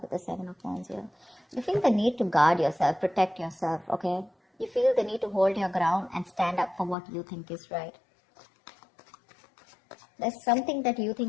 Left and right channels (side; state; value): right; drops out; at 7.0 s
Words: the Seven of Wands here. You feel the need to guard yourself, protect yourself, okay? You feel the need to hold your ground and stand up for what you think is right. There's something that you